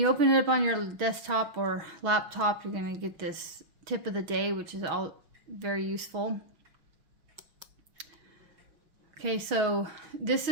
open it up on your desktop or laptop, you're going to get this tip of the day, which is all very useful. Okay, so this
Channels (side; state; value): left; late; 6.2 ms